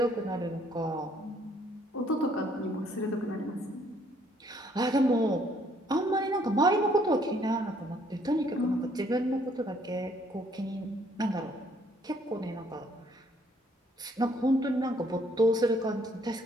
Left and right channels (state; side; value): normal; both; correlation 0.65